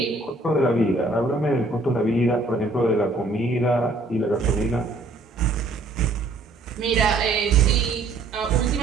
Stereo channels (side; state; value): left; quieter; 3.2 dB